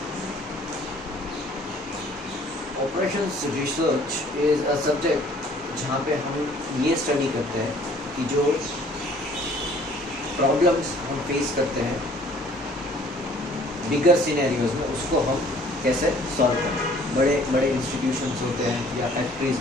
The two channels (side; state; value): both; normal; correlation 0.56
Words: Operations research is a subject जहाँ पे हम ये study करते हैं कि जो प्रॉब्लम्स हम फेस करते हैं बिगर सिनेरियोज में उसको हम कैसे सॉल्व करें। बड़े बड़े इंस्टीट्यूशंस होते हैं या फैक्ट्रीज,